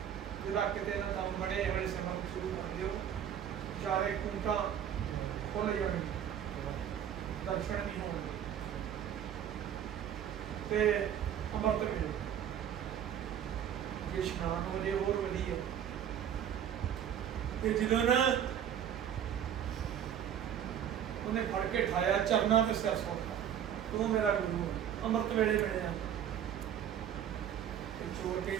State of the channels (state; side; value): quieter; left; 9.5 dB